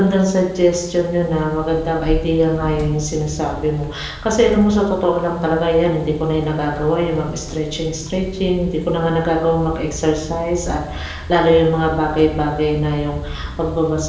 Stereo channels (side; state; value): both; identical; correlation 1.00